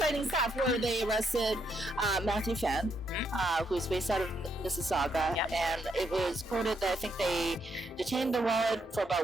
stuff, where they arrested Matthew Phan, who's based out of Mississauga, and it was quoted that I think they detained the wallet for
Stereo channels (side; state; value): both; normal; correlation 0.77